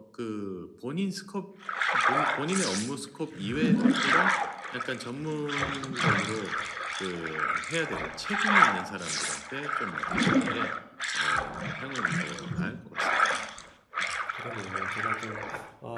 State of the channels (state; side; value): identical; both; correlation 1.00